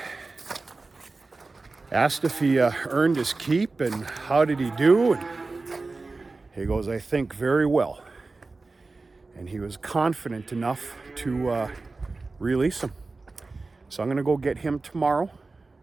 asked if he earned his keep and how did he do. And he goes, I think very well. And he was confident enough to release him. So I'm going to go get him tomorrow,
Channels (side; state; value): left; quieter; 3.6 dB